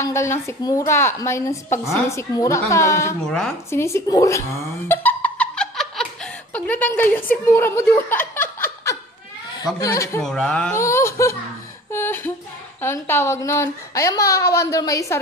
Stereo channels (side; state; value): both; normal; correlation 0.44